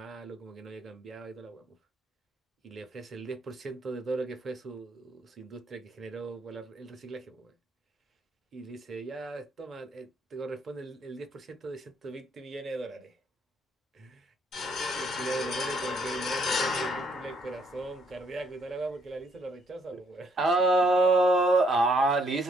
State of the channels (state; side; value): normal; both; correlation 0.69